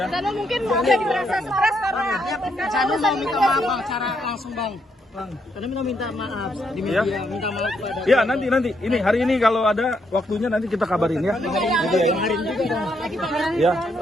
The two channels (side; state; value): both; normal; correlation 0.76